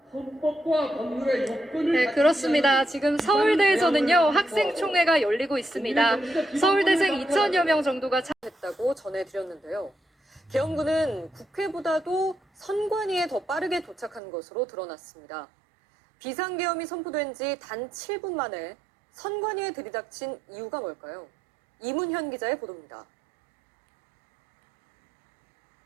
네, 그렇습니다. 지금 서울대에서는요, 학생총회가 열리고 있습니다. 서울대생 2,000여 명 정도가 참여했다고 전해드렸는데요. 계엄군은 국회보다도 선관위에 더 빠르게 도착한 것으로 드러났습니다. 비상계엄이 선포된 지 단 7분 만에 선관위에 들이닥친 이유가 뭘까요? 이문현 기자의 보도입니다.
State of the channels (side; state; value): left; drops out; at 14.2 s